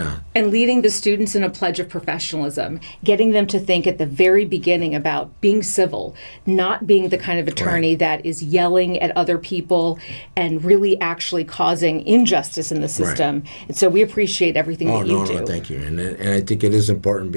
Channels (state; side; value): inverted; both; correlation -1.00